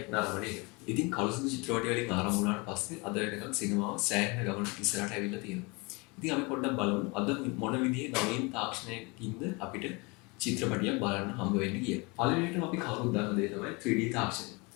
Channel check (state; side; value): quieter; right; 27.9 dB